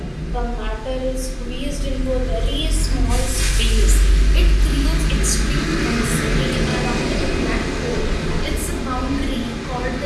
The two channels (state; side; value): identical; both; correlation 1.00